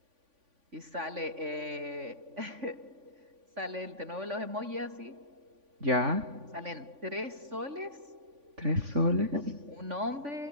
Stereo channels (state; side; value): late; left; 3.5 ms